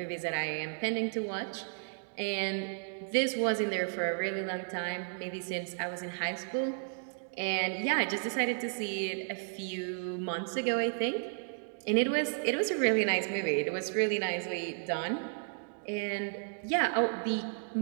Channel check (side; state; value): left; silent; digital silence